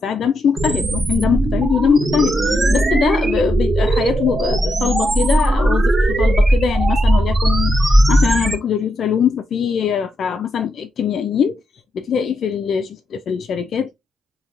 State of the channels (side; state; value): both; normal; correlation 0.83